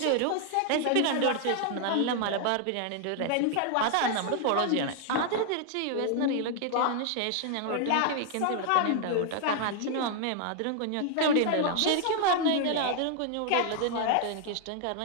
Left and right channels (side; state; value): both; different; correlation 0.00